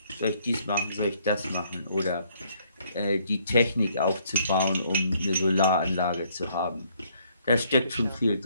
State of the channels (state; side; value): inverted; both; correlation -0.66